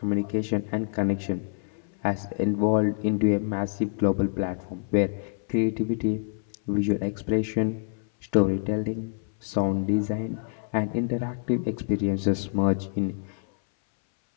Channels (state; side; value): silent; right; 60 dB below the other